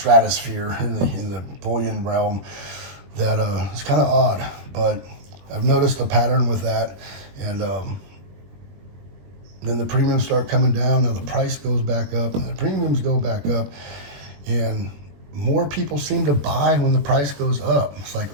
in the bullion realm. That it's kind of odd, but I've noticed a pattern with that, and then the premiums start coming down. Now the price goes back up, and the premiums go back up, and more people seem to buy when the price goes up. It's like,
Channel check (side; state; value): left; late; 21 ms